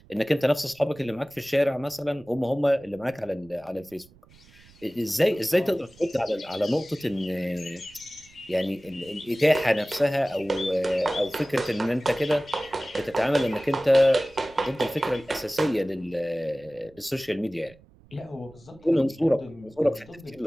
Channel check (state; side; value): noise; right; rumble, 26 dB below the sound